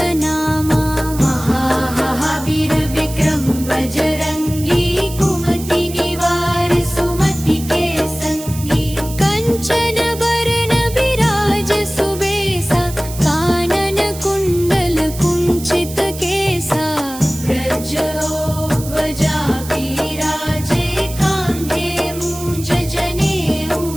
नामा। महावीर विक्रम बजरंगी, कुमति निवार सुमति के संगी। कंचन बरन बिराज सुबेसा, कानन कुंडल कुंचित केसा। व्रजध्वजा बिराजे, कांधे मूंज जनेऊ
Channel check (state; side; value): noise; right; hiss, 13 dB below the sound